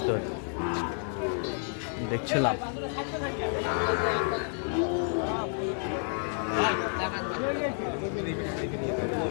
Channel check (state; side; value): silent; right; 58 dB below the other